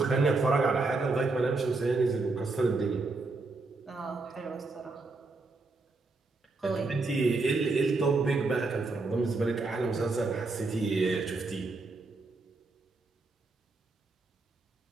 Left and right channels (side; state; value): left; quieter; 3.6 dB